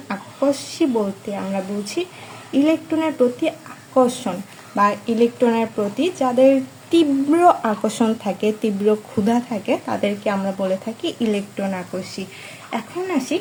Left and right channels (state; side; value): identical; both; correlation 1.00